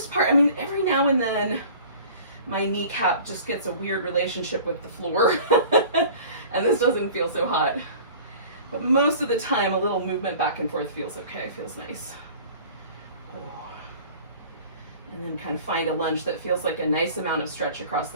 part, I mean, every now and then my kneecap just gets a weird relationship with the floor and this doesn't feel so hot. But most of the time, a little movement back and forth feels okay, feels nice. And then kind of find a lunge that feels like a nice amount of stretch across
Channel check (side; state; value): both; inverted; correlation -0.44